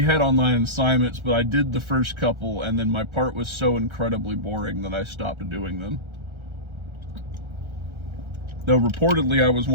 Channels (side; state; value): left; late; 1.3 ms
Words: had online assignments, but I did the first couple, and then my part was so incredibly boring that I stopped doing them. Though reportedly I was